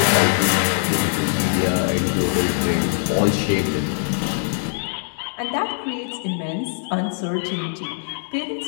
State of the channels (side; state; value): right; silent; 64 dB below the other